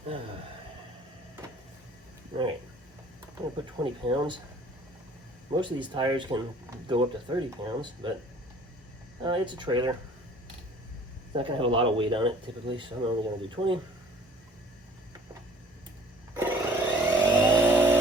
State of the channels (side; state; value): both; normal; correlation 0.52